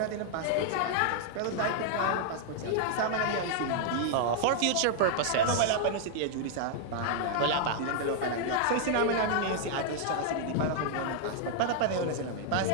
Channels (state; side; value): different; both; correlation -0.01